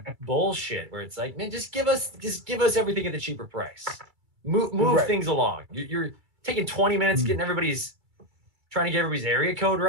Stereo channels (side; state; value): left; late; 2.3 ms